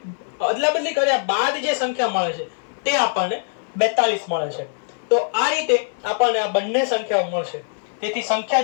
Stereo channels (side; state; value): right; silent; digital silence